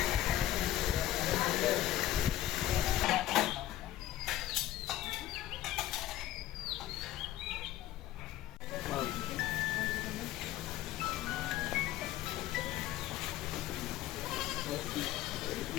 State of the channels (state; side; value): quieter; right; 13.8 dB